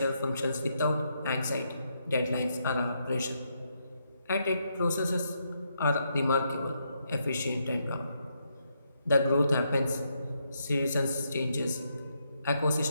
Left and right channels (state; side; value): inverted; both; correlation -0.79